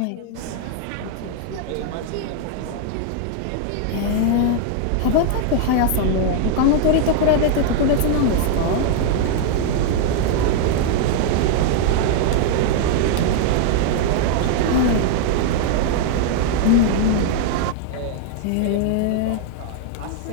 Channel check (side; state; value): both; different; correlation 0.00